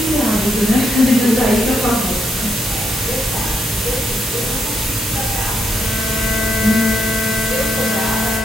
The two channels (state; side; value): normal; both; correlation 0.78